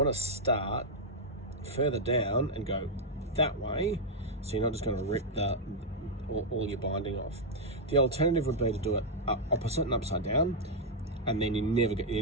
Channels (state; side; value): normal; both; correlation -0.03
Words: to start further down and go that way, so you're not just going to rip all your binding off. The alternative would be to do it opposite and upside down, and then you're never